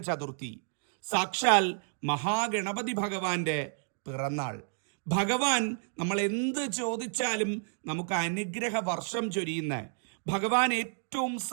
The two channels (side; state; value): left; silent; digital silence